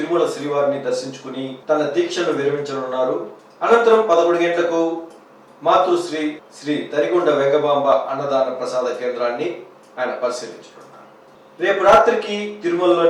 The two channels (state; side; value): identical; both; correlation 1.00